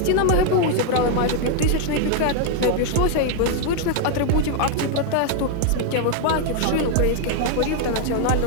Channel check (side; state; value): both; different; correlation 0.00